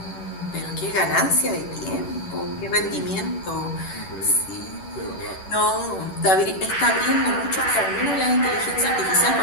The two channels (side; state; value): right; late; 10 ms